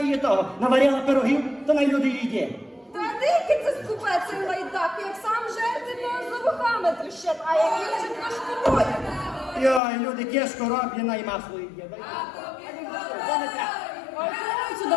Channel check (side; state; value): right; drops out; at 9.8 s